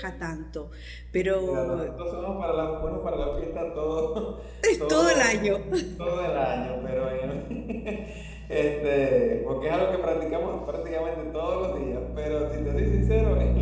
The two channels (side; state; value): both; identical; correlation 1.00